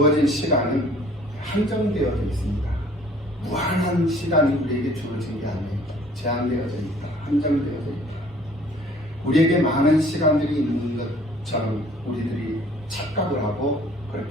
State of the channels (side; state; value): both; normal; correlation 0.54